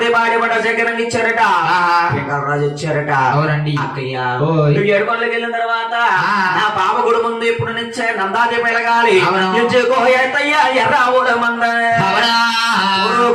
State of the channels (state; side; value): identical; both; correlation 1.00